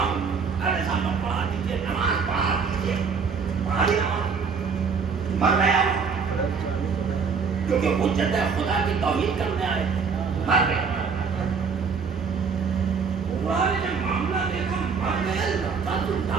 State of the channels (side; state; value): left; quieter; 5.5 dB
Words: ارے صاحب پڑھا دیجیے نماز پڑھا دیجیے پڑھا دی نماز مر گیا کیونکہ حجت خدا کی توحید کرنے آئے مر گیا نے جب معاملہ دیکھا مر گیا لگتا تو